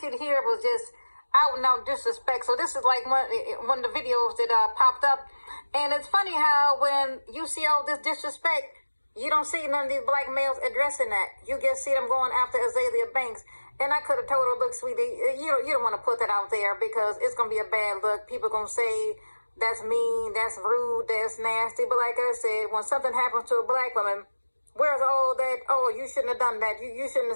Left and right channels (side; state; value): both; inverted; correlation -1.00